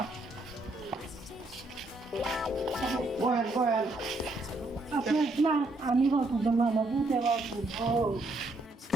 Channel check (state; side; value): normal; both; correlation 0.74